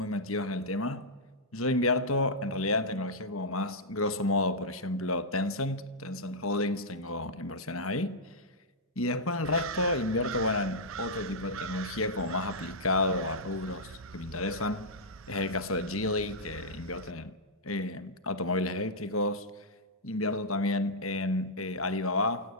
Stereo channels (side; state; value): both; normal; correlation -0.09